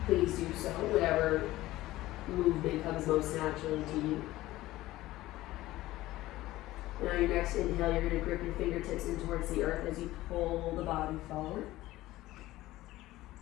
please do so, whatever movement comes most naturally to you. Now your next inhale, you're going to grip your fingertips in towards the earth as you pull the body forward.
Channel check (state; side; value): quieter; right; 16.7 dB